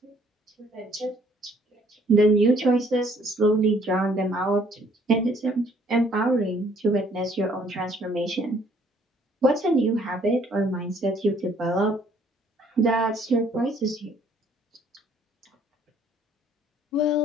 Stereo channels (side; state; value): both; normal; correlation 0.62